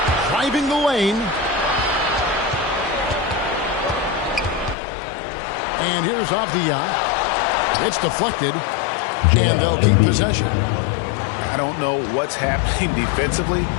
Driving the lane. And here's Avdia. It's deflected. And they'll keep possession. I don't know what's happening defensively,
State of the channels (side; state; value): right; drops out; at 4.8 s